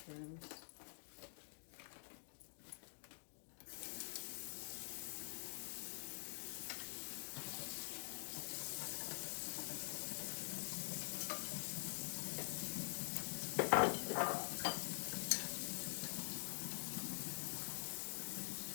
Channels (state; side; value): silent; right; digital silence